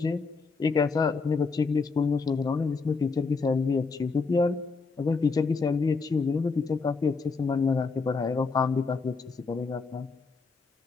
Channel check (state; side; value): quieter; right; 4.5 dB